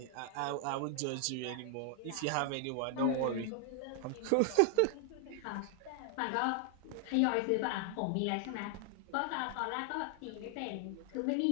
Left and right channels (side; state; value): both; different; correlation 0.00